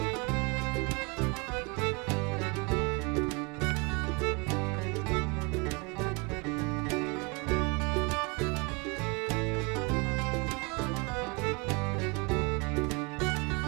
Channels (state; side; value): quieter; left; 29.5 dB